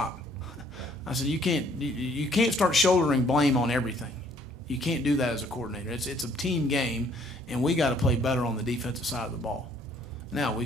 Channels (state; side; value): normal; both; correlation 0.62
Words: I said, you can't start shouldering blame on everything. You can't do that as a coordinator. It's a team game, and we got to play better on the defensive side of the ball. Now